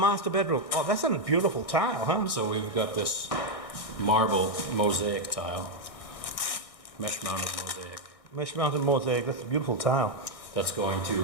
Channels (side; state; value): right; late; 1.6 ms